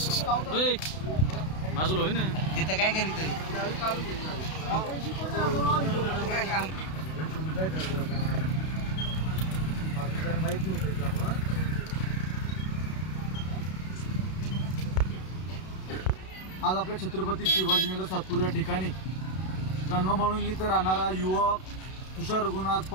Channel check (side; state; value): right; late; 32 ms